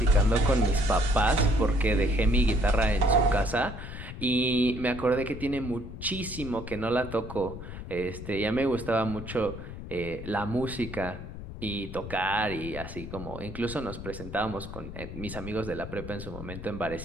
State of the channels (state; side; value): noise; left; rumble, 10 dB below the sound